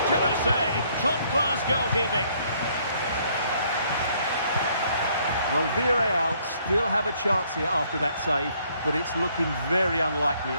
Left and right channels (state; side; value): inverted; both; correlation -0.66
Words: save. Top-class goalkeeping. Well, Villarreal still have a chance here after that save, but it's looking very unlikely